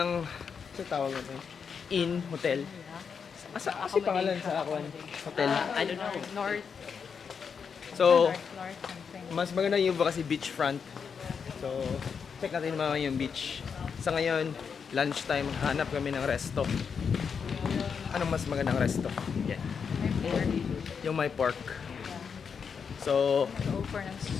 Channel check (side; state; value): right; quieter; 6.3 dB